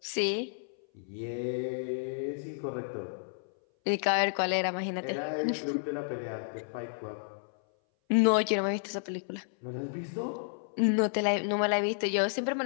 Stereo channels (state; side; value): silent; right; 57 dB below the other